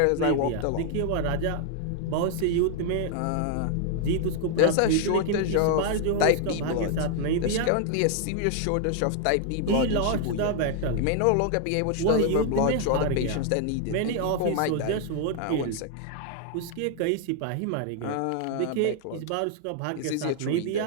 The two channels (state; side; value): different; both; correlation 0.00